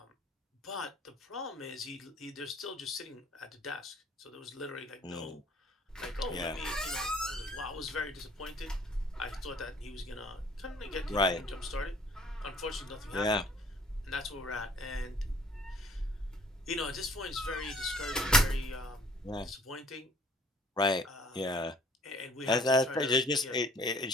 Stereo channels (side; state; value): both; normal; correlation 0.55